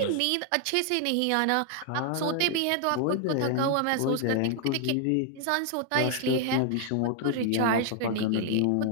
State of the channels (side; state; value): both; different; correlation 0.00